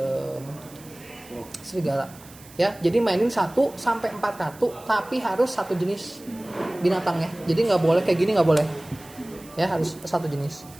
serigala. Ya, jadi mainin 1 sampai 4 kartu, tapi harus satu jenis binatangnya. Jadi nggak boleh kayak gini, nggak boleh. Ya, harus satu jenis.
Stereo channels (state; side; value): noise; right; hiss, 21 dB below the sound